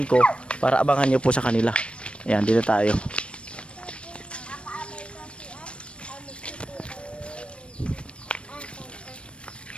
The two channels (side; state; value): right; late; 0.059 ms